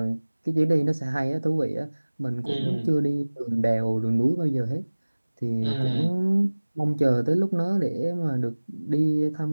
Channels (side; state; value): both; inverted; correlation -1.00